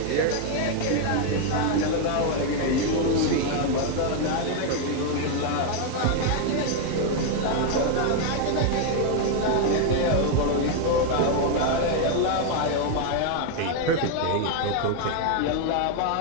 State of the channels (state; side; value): different; both; correlation 0.00